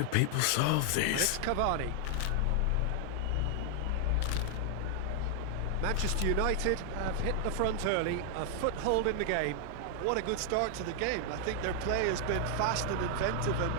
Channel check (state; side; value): different; both; correlation 0.00